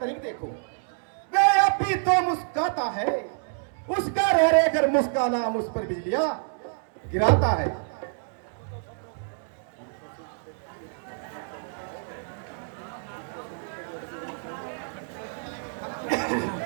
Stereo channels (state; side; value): silent; left; digital silence